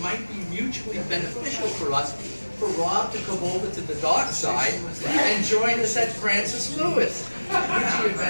might be mutually beneficial for us, for Rob to come over to the dark side and join us at Francis Lewis, which he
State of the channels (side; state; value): both; inverted; correlation -1.00